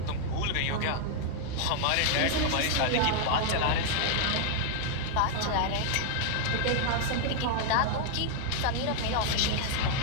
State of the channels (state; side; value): different; both; correlation 0.00